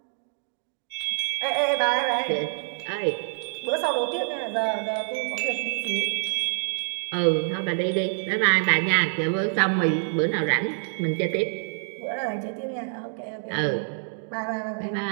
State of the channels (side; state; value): left; silent; digital silence